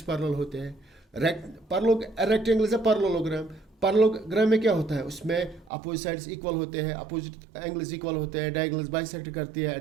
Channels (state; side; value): drops out; left; at 5.7 s